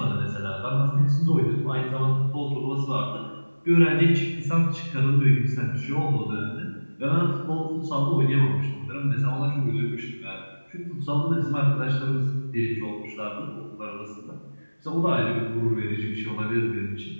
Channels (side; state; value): both; inverted; correlation -1.00